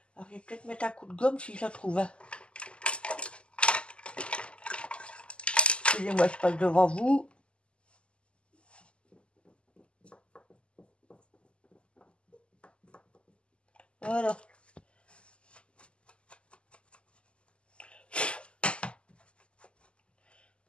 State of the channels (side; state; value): right; late; 0.053 ms